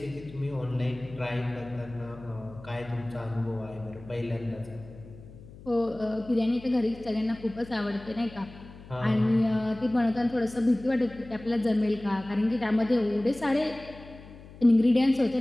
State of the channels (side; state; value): left; noise; hum, 18 dB below the sound